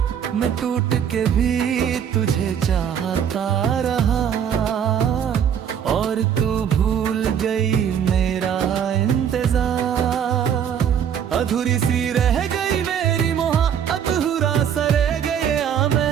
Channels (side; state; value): left; quieter; 8.5 dB